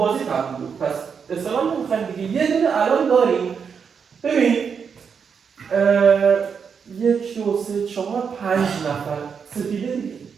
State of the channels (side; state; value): left; quieter; 6.4 dB